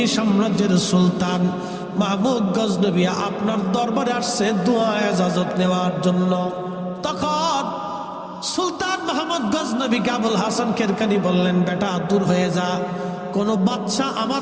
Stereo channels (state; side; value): identical; both; correlation 1.00